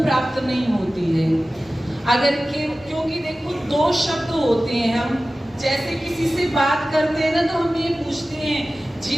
प्राप्त नहीं होती है। क्योंकि देखो, दो शब्द होते हैं, हम जैसे किसी से बात करते हैं ना, तो हम ये पूछते हैं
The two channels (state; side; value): normal; both; correlation 0.96